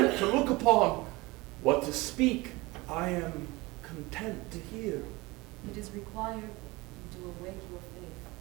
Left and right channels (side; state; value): left; quieter; 22.5 dB